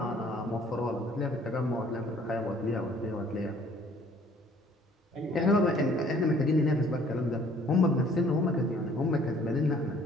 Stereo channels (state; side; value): normal; both; correlation 0.57